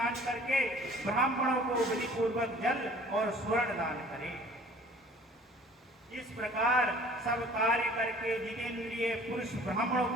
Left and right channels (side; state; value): both; normal; correlation 0.50